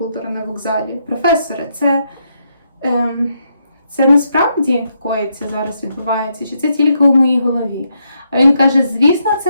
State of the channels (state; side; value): inverted; both; correlation -0.78